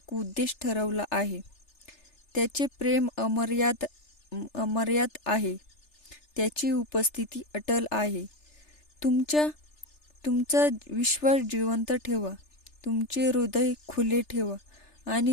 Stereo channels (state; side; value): late; right; 3.4 ms